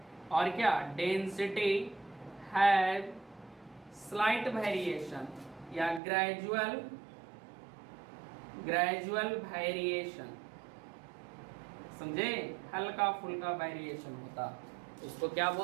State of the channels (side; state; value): left; drops out; at 6.0 s